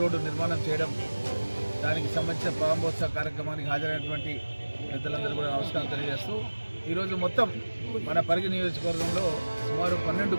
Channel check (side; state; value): both; inverted; correlation -1.00